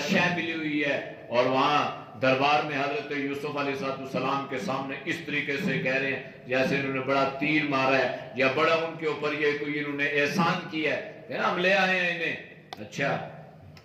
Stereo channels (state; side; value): identical; both; correlation 1.00